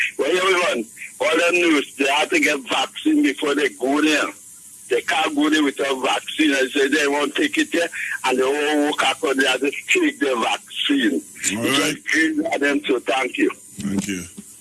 Well, everyone, all them news, they have to get vaccine before they go there. They can't go there without vaccine. I say they won't take it there, and they all walk out there to take the vaccine. All right. Just greedy at them, so thank you. Thank you.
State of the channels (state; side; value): identical; both; correlation 1.00